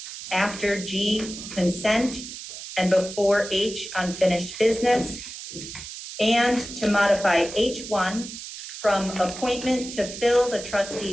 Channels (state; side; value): noise; right; hiss, 11 dB below the sound